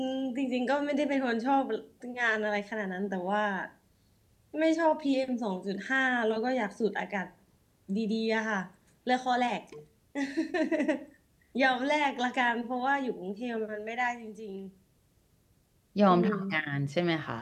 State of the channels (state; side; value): identical; both; correlation 1.00